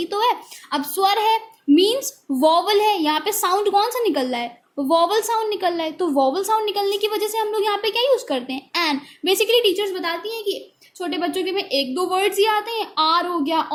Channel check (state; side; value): identical; both; correlation 1.00